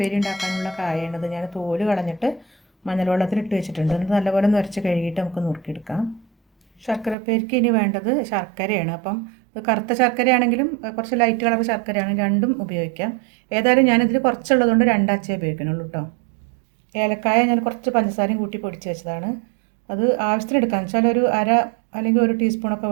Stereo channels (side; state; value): left; drops out; at 7.2 s